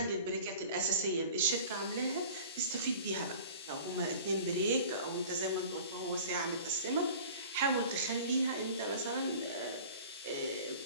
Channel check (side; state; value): both; inverted; correlation -0.42